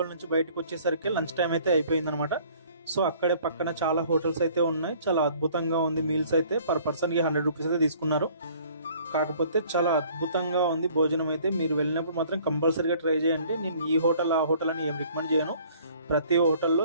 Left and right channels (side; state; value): both; inverted; correlation -0.55